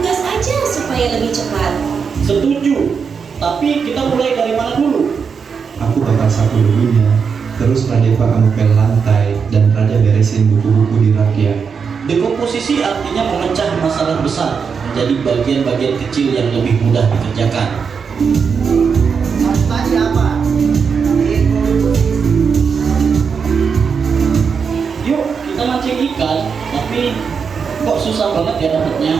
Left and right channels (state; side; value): quieter; left; 6.0 dB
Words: supaya lebih cepat. Setuju. Tapi kita mulai dari mana dulu? Aku bakal sapu debunya, terus Radeva kamu pel lantai, dan Raja beresin buku-buku di rak ya. Dekomposisi artinya memecah masalah besar menjadi bagian-bagian kecil yang lebih mudah dikerjakan. Tadi apa? Yuk, kita mancing ikan, tapi kok susah banget ya